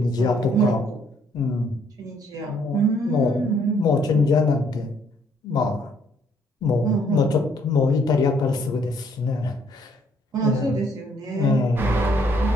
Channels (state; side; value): normal; both; correlation 0.67